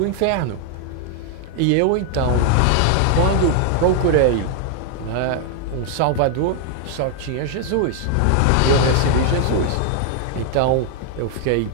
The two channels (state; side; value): different; both; correlation 0.00